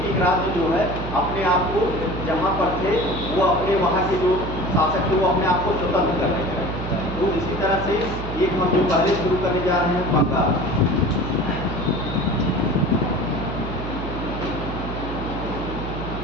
राज्य जो है अपने आप को जहाँ पर थे वो अपने वहाँ के जो शासक थे वो अपने आप को स्वतंत्र करने लगे। तो इसी तरह से एक हम जो पहले शुरू करने जा रहे हैं बंगाल।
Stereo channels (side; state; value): right; noise; hum, 7 dB below the sound